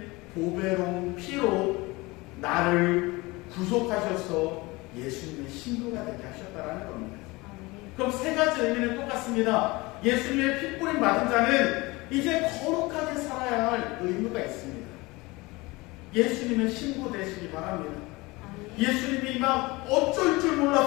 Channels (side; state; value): right; quieter; 23.0 dB